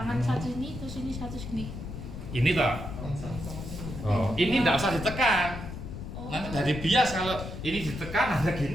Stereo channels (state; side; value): noise; left; rumble, 9 dB below the sound